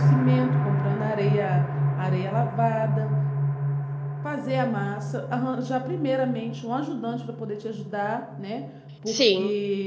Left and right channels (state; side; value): identical; both; correlation 1.00